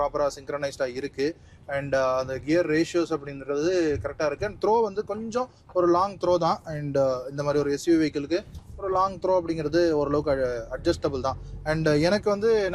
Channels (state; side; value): identical; both; correlation 1.00